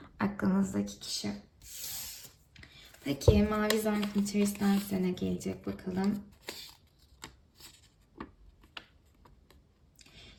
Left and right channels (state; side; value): identical; both; correlation 1.00